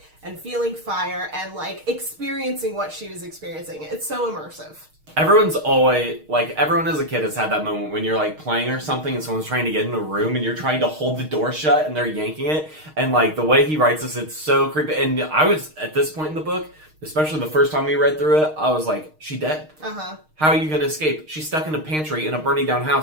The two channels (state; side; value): late; left; 6.5 ms